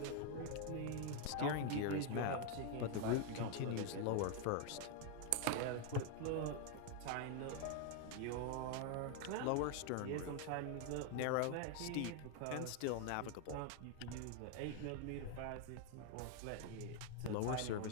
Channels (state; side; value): different; both; correlation 0.01